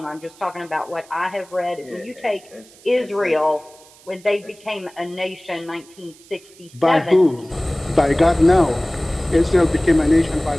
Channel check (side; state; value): right; noise; hiss, 25 dB below the sound